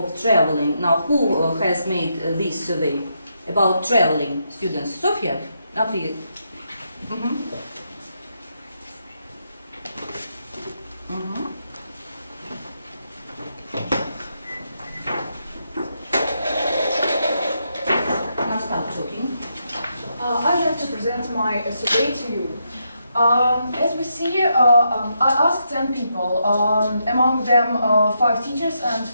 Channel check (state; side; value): inverted; both; correlation -0.81